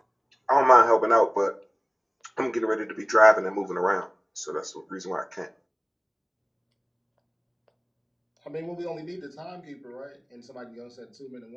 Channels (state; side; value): identical; both; correlation 1.00